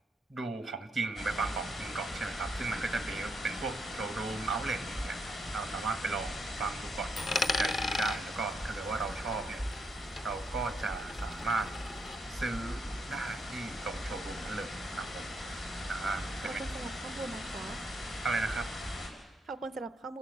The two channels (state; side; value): normal; both; correlation 0.78